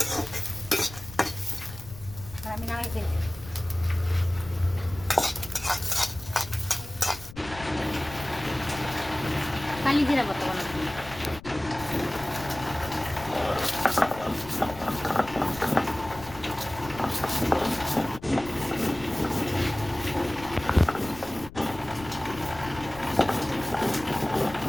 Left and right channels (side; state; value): left; noise; rumble, 16 dB below the sound